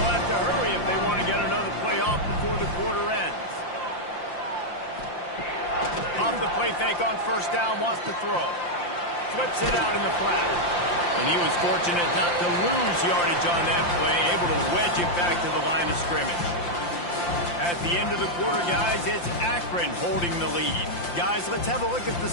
have to hurry if they want to get another play off before the quarter ends. Off the play fake on first down, wants to throw. Flips it out in the flat. And he was fortunate not to lose yardage on that play, able to wedge it back to the line of scrimmage. At the end of the quarter, guys, it's Akron holding the lead. Guys, let's have a look at the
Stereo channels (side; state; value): right; late; 5.8 ms